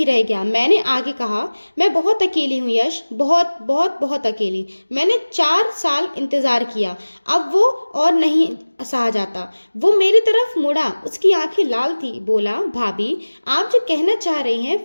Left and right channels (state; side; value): inverted; both; correlation -1.00